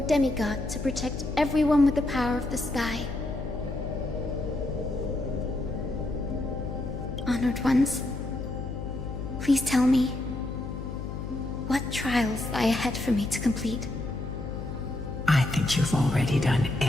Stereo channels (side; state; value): left; noise; hum, 7 dB below the sound